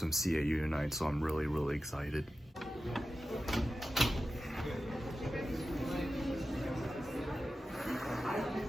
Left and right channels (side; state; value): both; normal; correlation 0.93